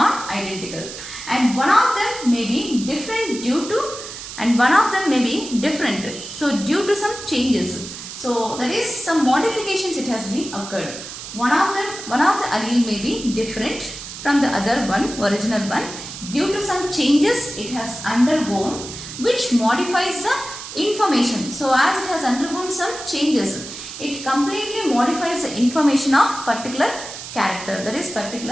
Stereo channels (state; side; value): noise; right; hiss, 11 dB below the sound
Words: and one of them may be different due to, and one of them may be different, so due to some changes. So that is, some modifications it has been occurred. One of the allele may be different from the other one, original one, due to some changes it has undergone, which modifies the information. So as it has undergone some changes, it completely modifies the information of particular character, that is